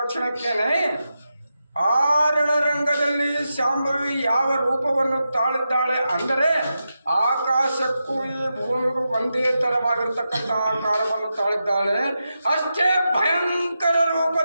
ಕ್ಷಣಕ್ಕೇನೆ ಆ ರಣರಂಗದಲ್ಲಿ ಶಾಂಭವಿ ಯಾವ ರೂಪವನ್ನು ತಾಳಿದ್ದಾಳೆ ಅಂದರೆ ಆಕಾಶಕ್ಕೂ ಈ ಭೂಮಿಗೂ ಒಂದೇ ಥರವಾಗಿರ್ತಕ್ಕಂಥ ಆಕಾರವನ್ನು ತಾಳಿದ್ದಾಳೆ. ಅಷ್ಟೇ ಭಯಂಕರ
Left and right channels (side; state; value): both; inverted; correlation -0.88